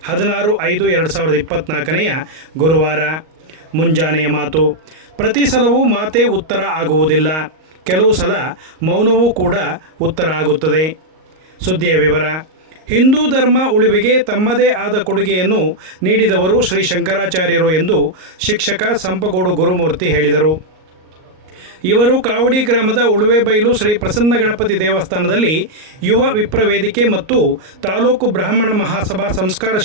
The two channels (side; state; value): left; late; 38 ms